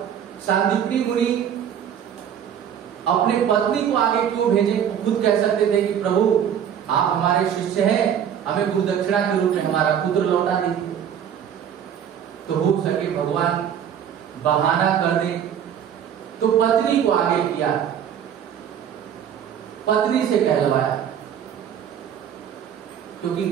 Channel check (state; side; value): quieter; left; 8.9 dB